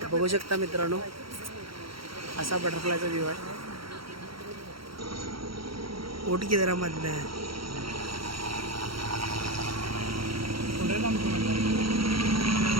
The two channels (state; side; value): late; left; 0.74 ms